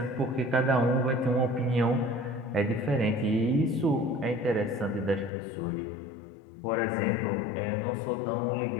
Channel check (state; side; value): drops out; right; at 5.3 s